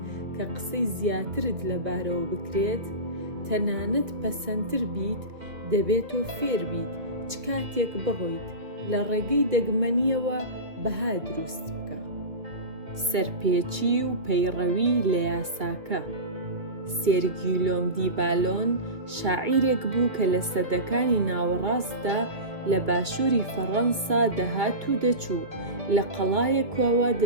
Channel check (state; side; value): late; left; 2.2 ms